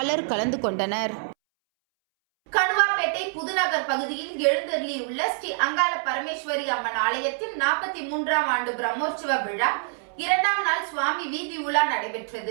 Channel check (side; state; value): left; silent; 61 dB below the other